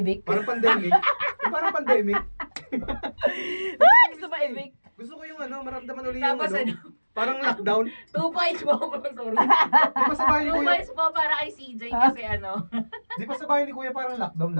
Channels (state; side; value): inverted; both; correlation -1.00